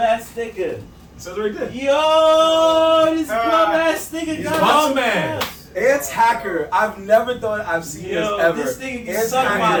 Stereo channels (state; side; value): identical; both; correlation 1.00